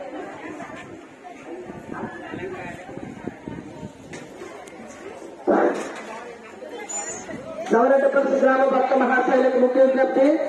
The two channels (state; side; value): identical; both; correlation 1.00